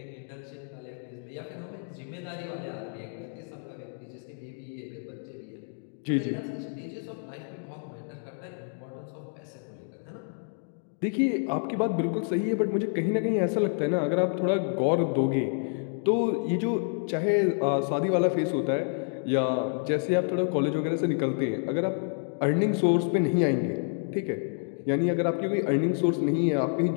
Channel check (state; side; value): silent; right; 59 dB below the other